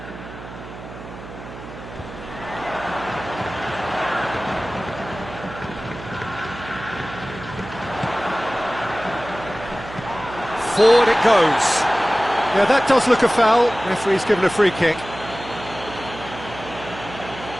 Forward it goes. Yeah, that does look a foul. Referee's given a free kick.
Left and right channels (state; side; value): noise; right; hum, 14 dB below the sound